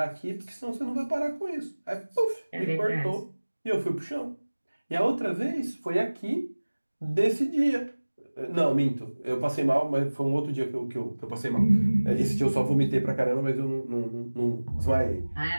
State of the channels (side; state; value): both; inverted; correlation -1.00